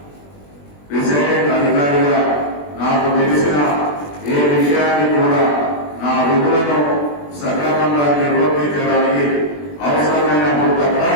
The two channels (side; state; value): right; late; 20 ms